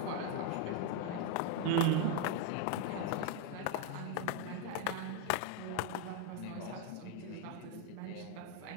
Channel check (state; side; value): different; both; correlation 0.01